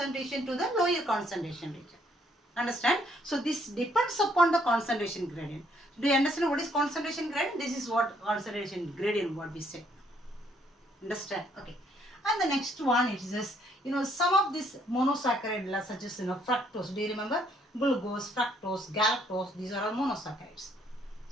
to the lower concentration region. Understand? So this depends upon the concentration gradient. Do you understand what is concentration gradient? This is what concentration gradient what we say. Understand? Okay. And the next one is this, some of this monosaccharide such as fructose. Do you remember? Glucose, fructose, galactose, these are all monosaccharides.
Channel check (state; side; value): normal; both; correlation 0.68